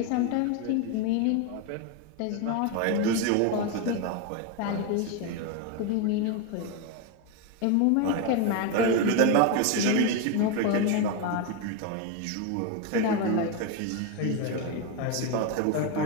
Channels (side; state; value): both; different; correlation 0.02